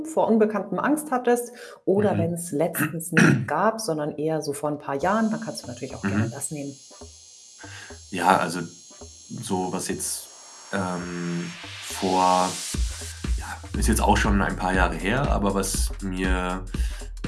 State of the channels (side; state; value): both; identical; correlation 1.00